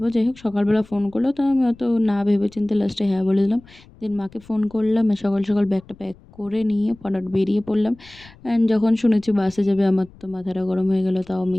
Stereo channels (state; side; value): noise; left; rumble, 24 dB below the sound